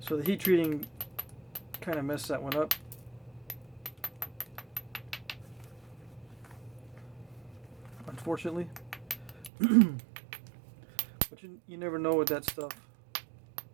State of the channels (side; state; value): left; drops out; at 9.5 s